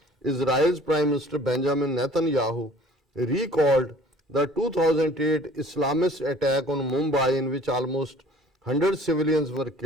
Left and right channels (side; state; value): both; normal; correlation 0.51